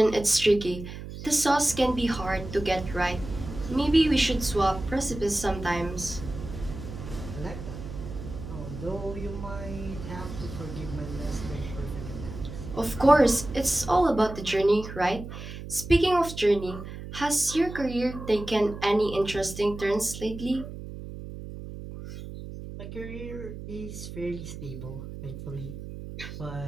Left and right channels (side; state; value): right; noise; hum, 10 dB below the sound